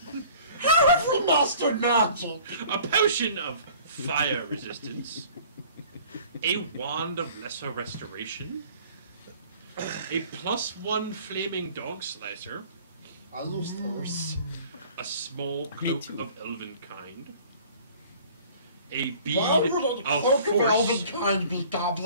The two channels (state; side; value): inverted; both; correlation -0.50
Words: How have we mastered magic? a potion of fire resistance, a wand of lesser restoration, a +1 flaming dog slicer, I lose first. a small cloak of elven kind, a bead Why would a of cloak of elven force. kind be